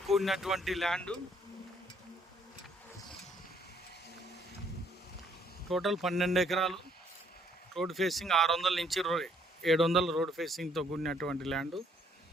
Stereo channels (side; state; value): both; normal; correlation 0.66